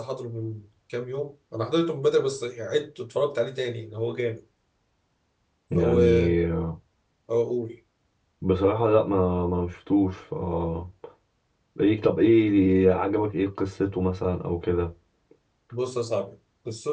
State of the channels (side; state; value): both; identical; correlation 1.00